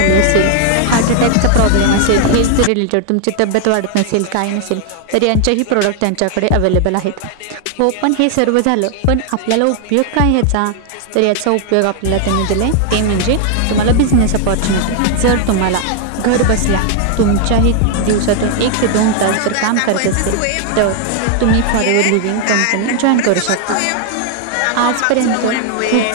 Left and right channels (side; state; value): both; different; correlation 0.00